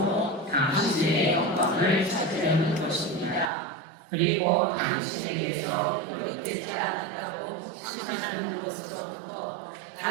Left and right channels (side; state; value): left; drops out; at 3.5 s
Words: 당신의 영광을 찾으려는 것입니다. 그리고 당신에게서 거룩되지 않았다고 생각하는 것으로부터